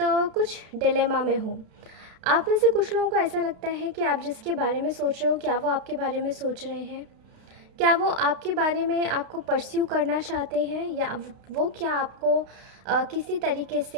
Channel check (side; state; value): left; late; 32 ms